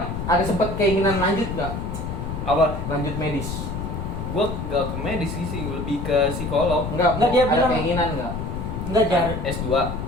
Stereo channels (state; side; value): noise; left; rumble, 5 dB below the sound